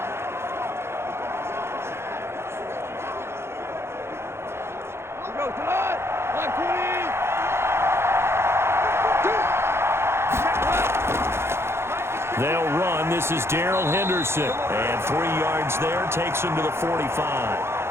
They'll run. This is Darrell Henderson. And 3 yards there takes him to the 45.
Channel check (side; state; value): left; late; 0.12 ms